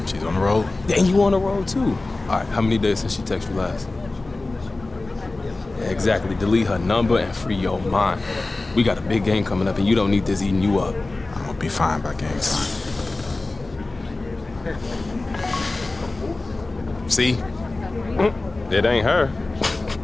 She's on the road. And you on the road too. All right, how many days since she texted you last? Yeah, exactly. Delete her number and free your mind. We got a big game coming up, and you don't need this eating you up. I'm gonna be fine by game time. See? It ain't her.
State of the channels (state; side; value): quieter; right; 3.2 dB